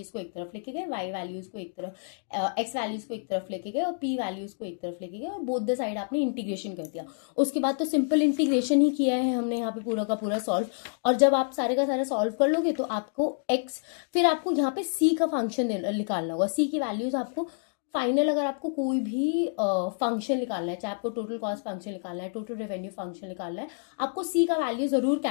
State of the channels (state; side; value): silent; right; digital silence